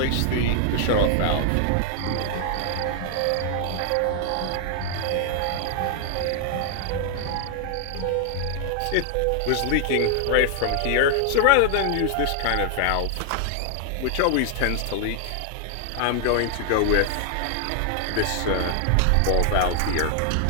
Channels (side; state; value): both; different; correlation 0.00